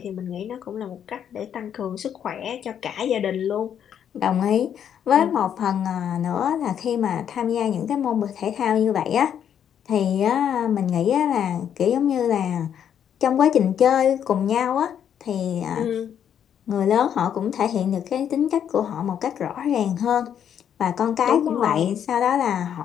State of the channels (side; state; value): right; quieter; 9.0 dB